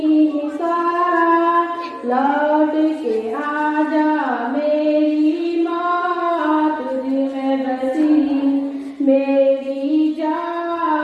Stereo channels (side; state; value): both; identical; correlation 1.00